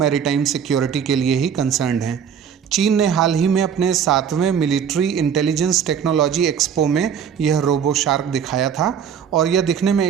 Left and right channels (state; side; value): quieter; left; 7.8 dB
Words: सिक्योरिटी के लिए ही कंसर्न्ड हैं। चीन ने हाल ही में अपने 7वें मिलिट्री इंटेलिजेंस टेक्नोलॉजी एक्सपो में यह रोबो शार्क दिखाया था और यह दिखने में